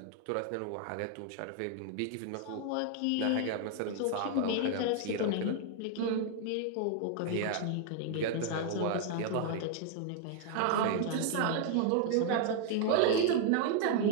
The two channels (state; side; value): different; both; correlation 0.00